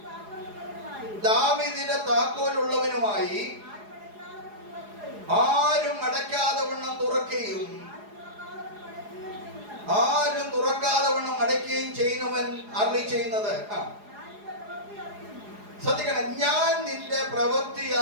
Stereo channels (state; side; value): late; left; 4.8 ms